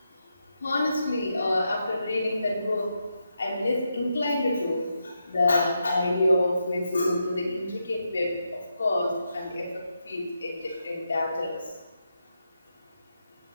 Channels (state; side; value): inverted; both; correlation -0.85